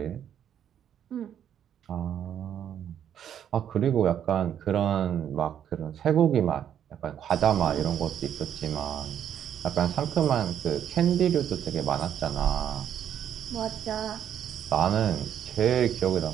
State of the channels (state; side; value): quieter; left; 9.6 dB